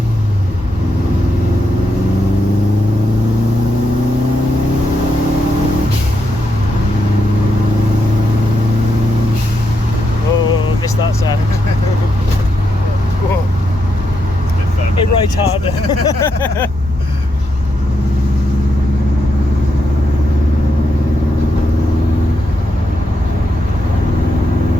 Oh, missed that sound. Whoa. It right harder.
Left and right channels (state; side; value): normal; both; correlation 0.82